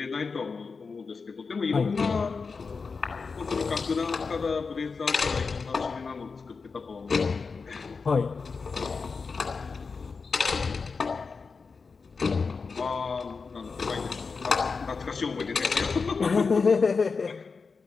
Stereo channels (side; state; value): right; quieter; 4.8 dB